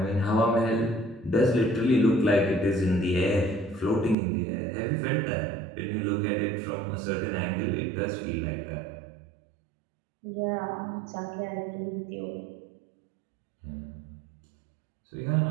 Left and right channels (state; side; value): drops out; left; at 4.2 s